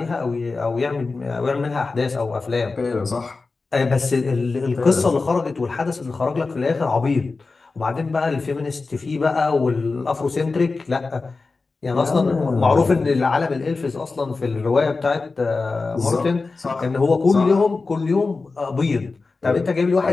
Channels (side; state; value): right; quieter; 4.0 dB